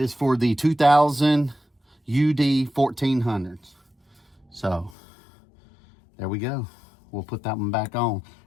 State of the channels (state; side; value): drops out; right; at 5.0 s